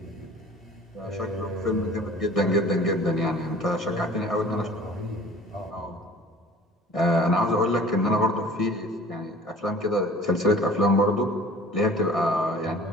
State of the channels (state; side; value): normal; both; correlation 0.47